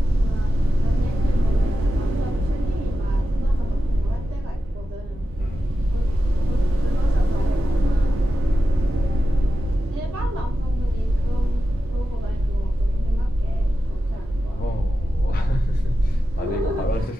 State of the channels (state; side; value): normal; both; correlation 0.91